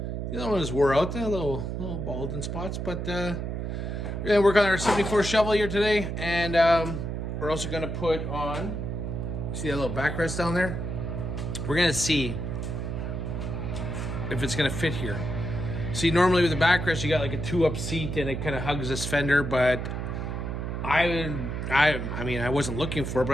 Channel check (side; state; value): right; noise; hum, 3 dB below the sound